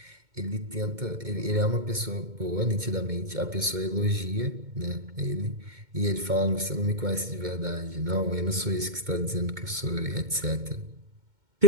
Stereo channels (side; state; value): left; late; 2.1 ms